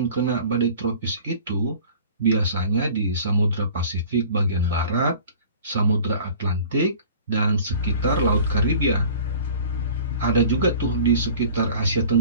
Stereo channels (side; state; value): both; inverted; correlation -0.45